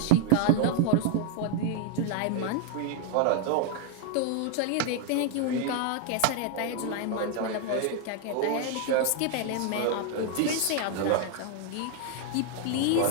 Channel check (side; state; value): both; different; correlation 0.00